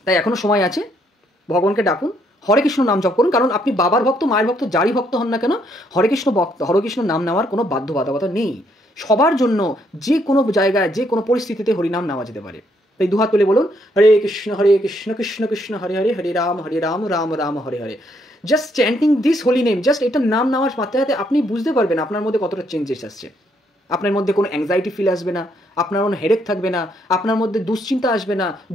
তাই এখনো সময় আছে, ভগবানকে ডাকুন, হরে কৃষ্ণ নাম জপ করুন। কারণ আপনি বাবার ভক্ত, মায়ের ভক্ত, যারই ভক্ত হন না কেন, হরে কৃষ্ণ নাম নেওয়ার কোনো বাধ্যবাধকতা নেই। সবার জন্য যে কোনো জায়গায় যে কোনো পরিস্থিতিতে হরিনাম নেওয়া যেতে পারে। তাই দুহাত তুলে বলুন, Hare Krishna Krishna Krishna Hare Hare, Hare Ram Ram Ram Hare Hare. Just chanting this holy name, just এটা নাম নেওয়ার মাত্রা আপনি বুঝতে পারবেন আপনার মধ্যে কতটা চেঞ্জেস আসছে। আপনার মধ্যে কোনো অ্যাংজাইটি ফিল আসবে না, আপনার কোনো হেডেক থাকবে না, আপনার মধ্যে দুশ্চিন্তা আসবে না,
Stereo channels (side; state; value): both; normal; correlation 0.72